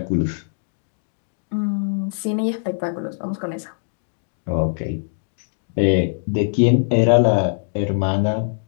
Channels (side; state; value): right; silent; digital silence